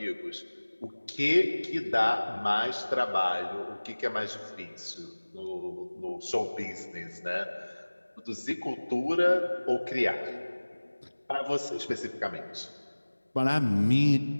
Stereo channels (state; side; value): inverted; both; correlation -1.00